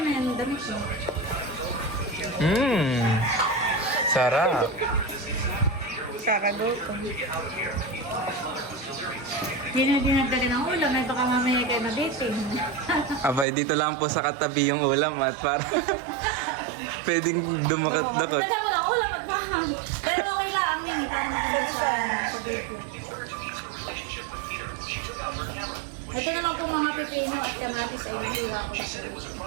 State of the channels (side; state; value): left; drops out; at 13.5 s